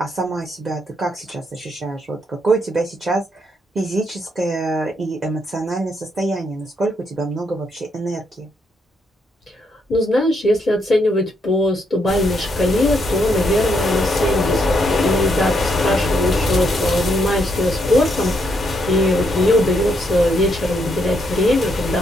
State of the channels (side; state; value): both; normal; correlation 0.76